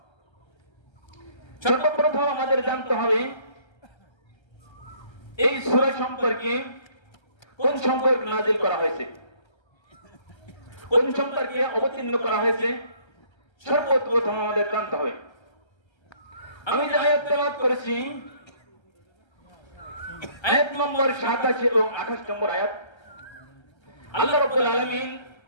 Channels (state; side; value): late; right; 1.3 ms